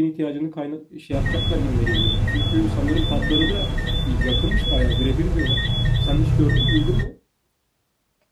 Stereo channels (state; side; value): identical; both; correlation 1.00